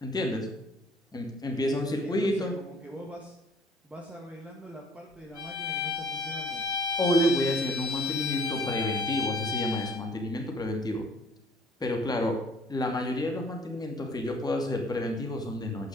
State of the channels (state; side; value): normal; both; correlation 0.55